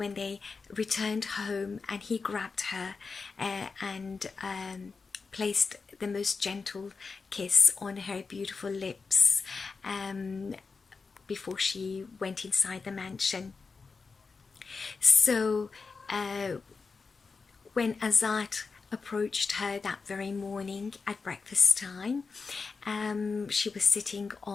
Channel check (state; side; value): quieter; right; 4.7 dB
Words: they returned home and he grabbed her and placed the most gentle kiss on her beautiful lips, before she went inside the mansion. So when Azat approached her that very morning at breakfast time, she was sitting